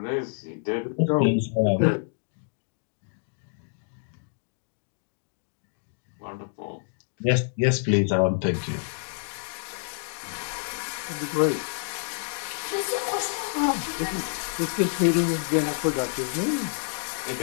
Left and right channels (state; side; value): silent; right; digital silence